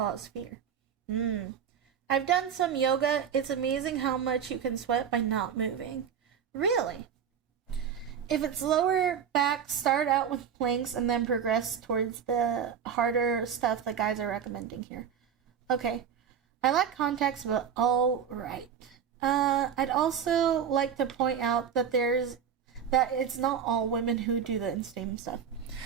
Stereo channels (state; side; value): quieter; left; 7.8 dB